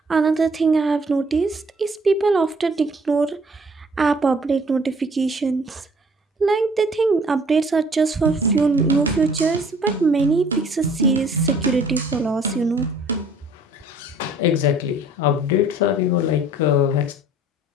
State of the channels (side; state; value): both; normal; correlation 0.55